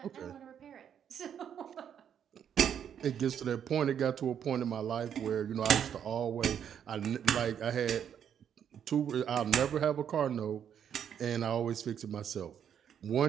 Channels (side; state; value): left; quieter; 8.7 dB